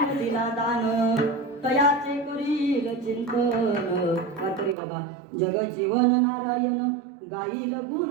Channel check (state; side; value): drops out; left; at 4.8 s